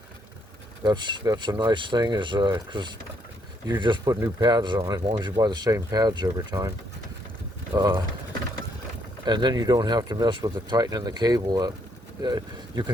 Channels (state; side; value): normal; both; correlation 0.72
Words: That's a nice thing, is because you just put new pads on as long as you buy the same pads every time. And then you don't have to mess with the tightening the cable up. You